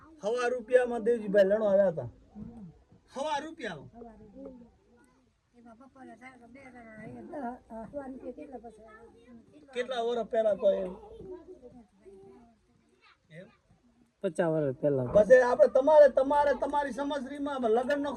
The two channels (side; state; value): both; identical; correlation 1.00